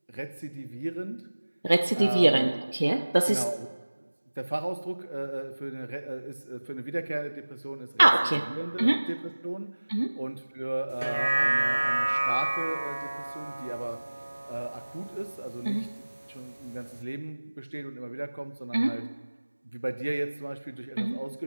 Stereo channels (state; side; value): inverted; both; correlation -1.00